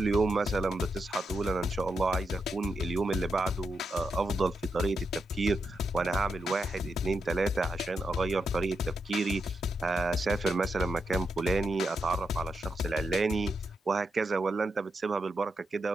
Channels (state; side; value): normal; both; correlation 0.84